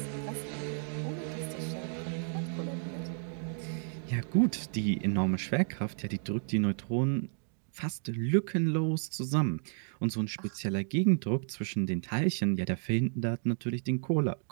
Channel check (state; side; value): silent; left; 56 dB below the other